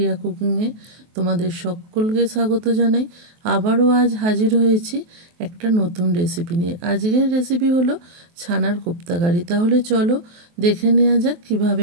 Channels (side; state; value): left; late; 23 ms